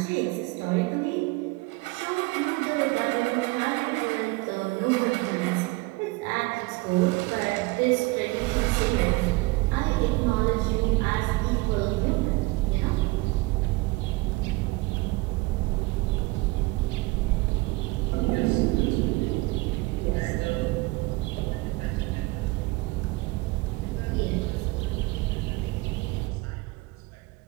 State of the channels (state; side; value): quieter; left; 23.2 dB